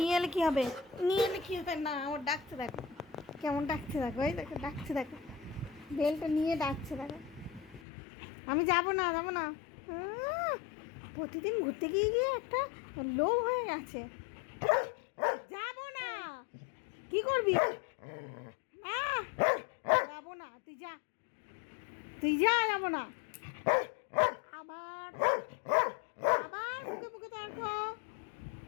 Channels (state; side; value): drops out; right; at 7.8 s